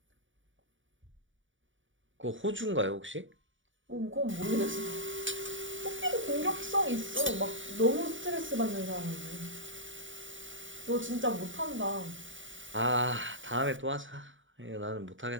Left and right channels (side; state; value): left; late; 0.56 ms